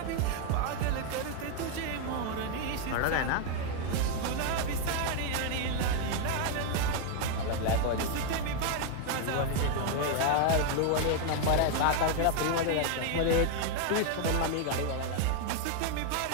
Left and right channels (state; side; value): different; both; correlation 0.01